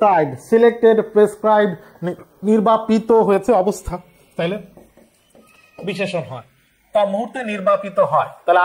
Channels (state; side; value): identical; both; correlation 1.00